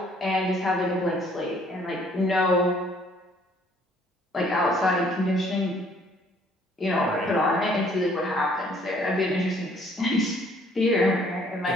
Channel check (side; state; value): both; normal; correlation 0.61